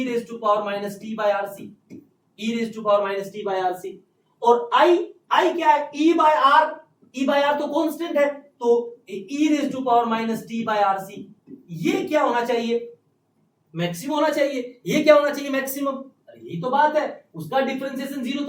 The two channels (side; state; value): both; identical; correlation 1.00